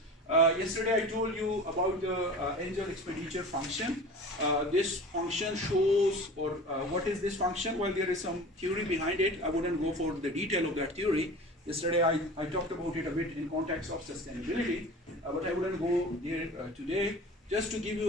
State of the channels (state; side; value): normal; both; correlation 0.37